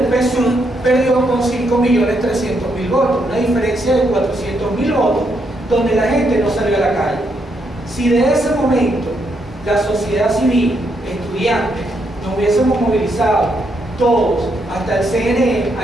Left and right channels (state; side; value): normal; both; correlation 0.77